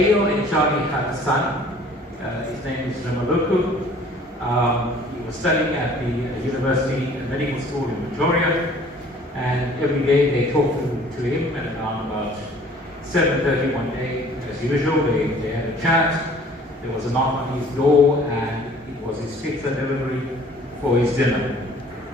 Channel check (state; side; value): normal; both; correlation 0.53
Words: and Inshadi had a son. His name is Ramaluku. He was studying at the University Medical School in Pretoria. And every day they talked to him, and around about 7:30 one day, as usual, they had a chat. There was a knock on his door, and it was his pizza delivery for his dinner.